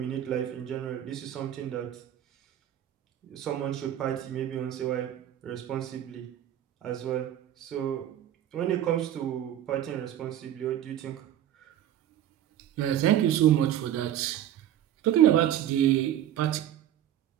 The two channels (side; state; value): left; quieter; 11.4 dB